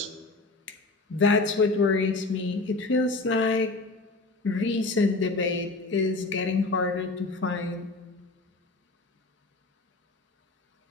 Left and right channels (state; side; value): quieter; right; 3.3 dB